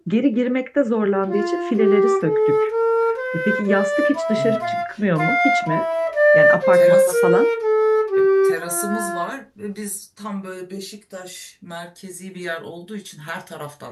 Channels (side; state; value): both; identical; correlation 1.00